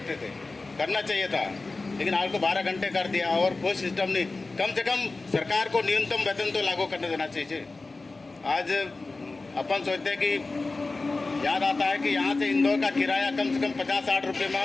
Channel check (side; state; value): right; quieter; 3.5 dB